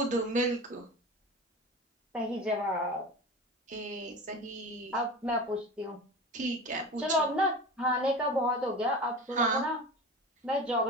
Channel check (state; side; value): normal; both; correlation 0.32